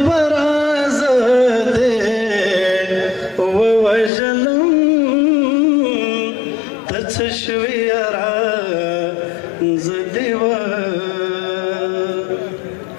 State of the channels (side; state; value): right; drops out; at 4.1 s